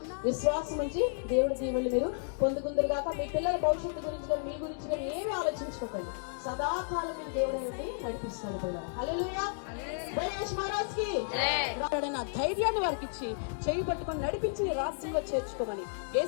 విశ్వాసం ఉంచి దేవుడి దీవెనలు మీరు పొందుకుందరు కాక, మీ పిల్లల భవిష్యత్తు గురించి కానీ మీ గురించి కానీ ఏమీ ఆలోచించుకోకండి. సదాకాలం మీరు దేవుడు అనేది నడిపిస్తాడు కూడా. హల్లెలూయా. గణేష్ మహారాజ్ కి ధైర్యాన్ని వారికి ఇచ్చి చేయి పట్టుకొని నడిపించి రాజ్యంలో చేర్చుకోమని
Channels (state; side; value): silent; right; digital silence